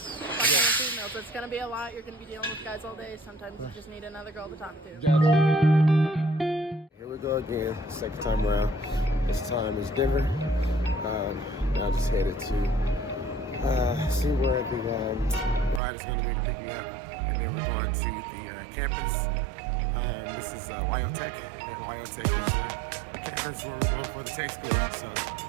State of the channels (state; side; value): drops out; left; at 15.8 s